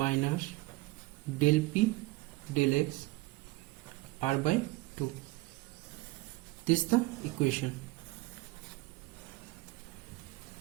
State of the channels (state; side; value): quieter; left; 20.7 dB